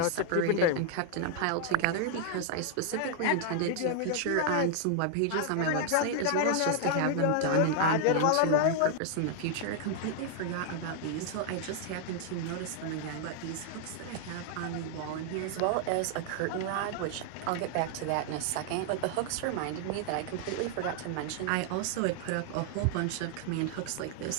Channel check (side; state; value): both; different; correlation 0.00